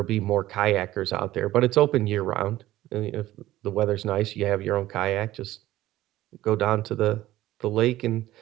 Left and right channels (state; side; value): quieter; left; 15.4 dB